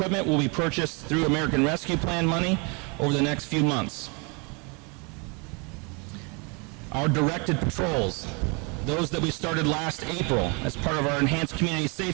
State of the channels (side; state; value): left; quieter; 32.0 dB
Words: will be purchased through American Rescue Plan money over the next few months. Our directed patrols, those that we started last April as part of our Enhanced Community